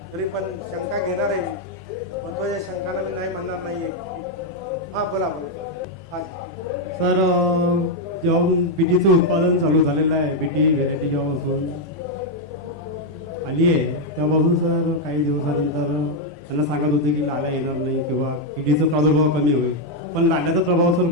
तरी पण शंका घेणार आहे. महत्वाच्या शंकाला मी नाही म्हणणार नाहीये. हा बोला बोला. सर, जेव्हा बीटीचं उत्पादन चालू झालेलं आहे, बीटी व्हेरायटी जेव्हापासून आली आहे तेव्हापासून सर काही दिवसानंतर त्यांना सांगत होते की लाल्या येणार नाही किंवा किडीचा प्रादुर्भाव कमी होईल. पण लाल्याचा प्रभाव सर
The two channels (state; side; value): normal; both; correlation 0.01